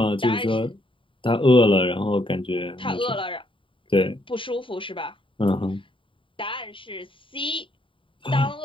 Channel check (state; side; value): late; right; 0.25 ms